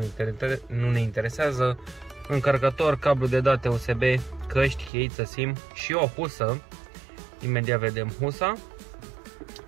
nu ne interesează, încărcător, cablu de date USB, căști, cheiță SIM și o husă. Imediat vedem husa.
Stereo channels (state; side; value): drops out; left; at 4.9 s